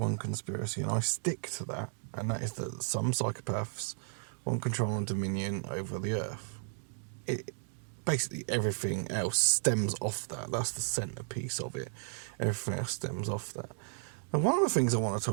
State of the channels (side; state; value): left; silent; digital silence